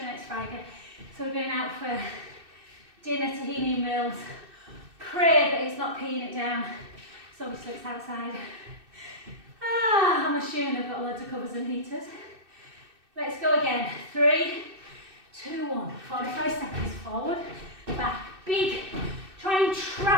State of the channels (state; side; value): late; left; 2.6 ms